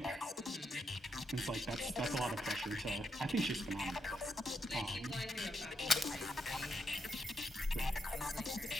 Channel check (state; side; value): normal; both; correlation 0.81